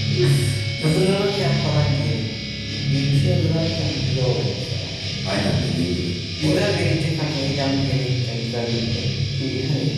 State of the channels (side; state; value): both; identical; correlation 1.00